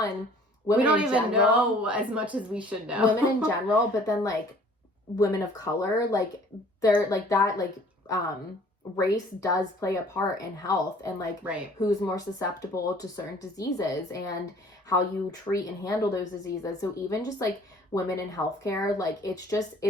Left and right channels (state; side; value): normal; both; correlation 0.53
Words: we don't even general, know as much as we should know. Women in general, but then like women of color, like they're like that, like race does play a part in health and like who's more susceptible to certain diseases and how you treat and handle those diseases. So even just like women in healthcare, like